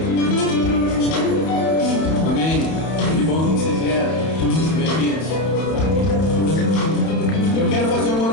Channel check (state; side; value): late; right; 31 ms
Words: Amém. Que bom que você vieram. Bem-vindos. Eu quero fazer uma